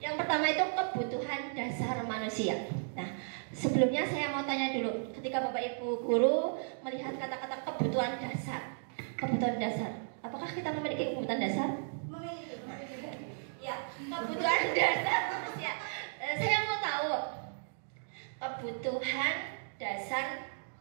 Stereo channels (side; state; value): left; silent; digital silence